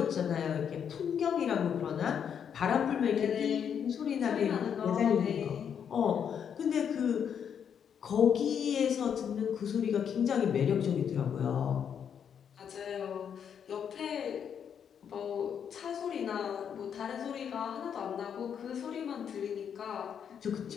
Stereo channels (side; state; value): right; quieter; 8.0 dB